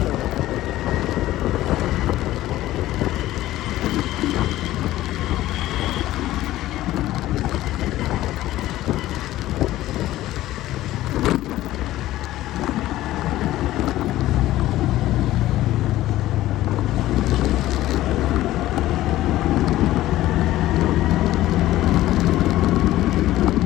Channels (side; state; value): right; quieter; 15.2 dB